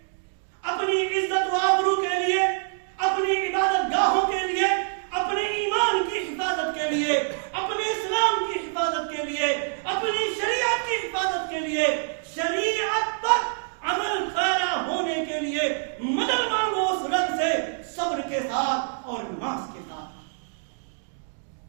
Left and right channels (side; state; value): left; silent; digital silence